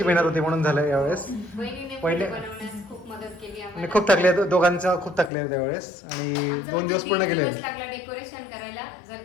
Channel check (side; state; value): right; drops out; at 5.3 s